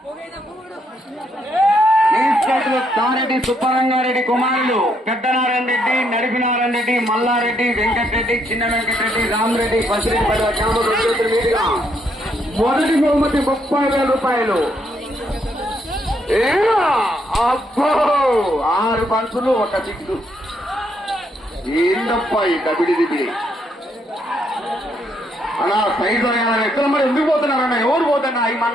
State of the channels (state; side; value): normal; both; correlation 0.74